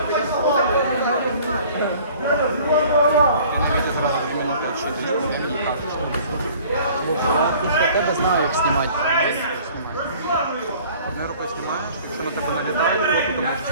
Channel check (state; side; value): inverted; both; correlation -0.50